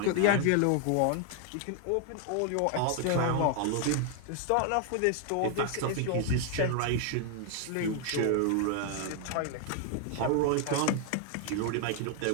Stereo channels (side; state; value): both; different; correlation 0.00